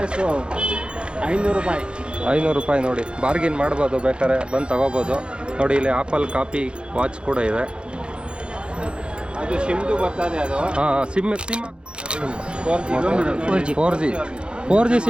500 ರೂಪಾಯಿ. 500 ರೂಪಾಯಿ ನೋಡಿ, ಬಾರ್ಗಿನ್ ಮಾಡ್ಬೋದು, ಬೇಕಾದ್ರೆ ಬಂದು ತಗೋಬೋದು. ನೋಡಿ ಇಲ್ಲಿ ಆಪಲ್ ಕಾಪಿ ವಾಚ್ ಕೂಡ ಇದೆ. ಅದು ಸಿಮ್ದು ಬರ್ತದೆ ಅದು. ಹಾಂ, ಸಿಮ್ 4G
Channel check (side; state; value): left; late; 0.054 ms